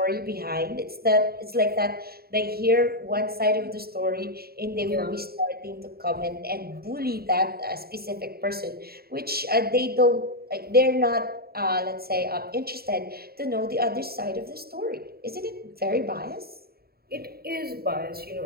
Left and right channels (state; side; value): late; left; 0.45 ms